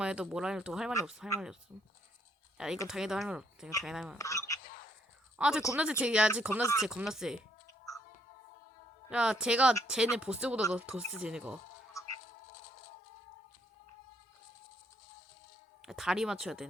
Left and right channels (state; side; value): normal; both; correlation 0.70